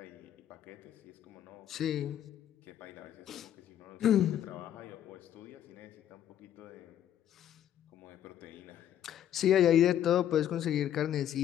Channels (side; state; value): right; quieter; 10.8 dB